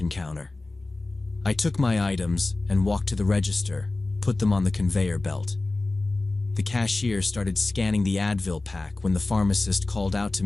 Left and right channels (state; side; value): quieter; right; 3.1 dB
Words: counter. I took my items and walked to the register, put them on the conveyor belt. The cashier started scanning the Advil pack when the pharmacist called out to